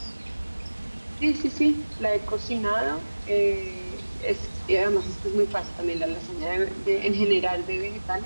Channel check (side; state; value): both; inverted; correlation -1.00